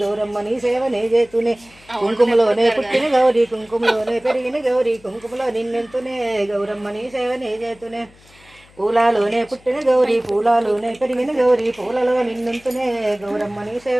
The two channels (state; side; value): noise; left; hum, 27 dB below the sound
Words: గౌరమ్మని సేవనే చేతునే. కుంకుమలోనే పుట్టిన గౌరీ కుంకుమలోనే పెరిగిన గౌరీ కుంకుమలో నిన్నుంతనే గౌరమ్మని సేవనే చేతునే. పూలలోనే పుట్టిన గౌరీ పూలలోనే పెరిగిన గౌరీ పూలలో నిన్నుంతనే గౌరమ్మని